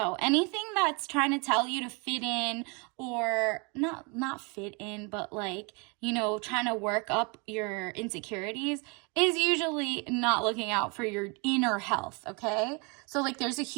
anything that's trying to tell you to fit in, or not fit in, but like, you know, trying to work up your insecurities is usually not looking out for your inner health, okay? So like there's a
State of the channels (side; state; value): left; quieter; 31.8 dB